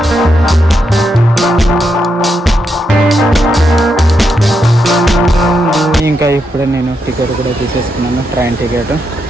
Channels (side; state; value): both; normal; correlation 0.82